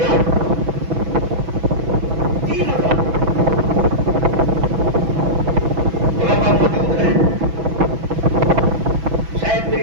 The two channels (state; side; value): late; left; 6.1 ms